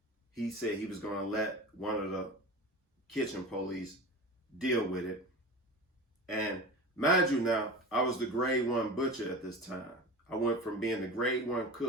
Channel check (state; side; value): normal; both; correlation 0.32